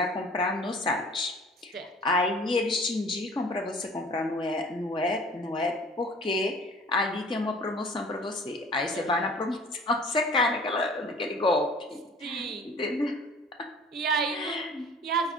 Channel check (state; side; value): normal; both; correlation 0.48